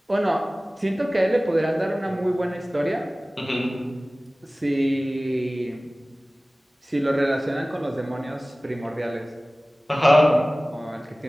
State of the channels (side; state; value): both; normal; correlation 0.98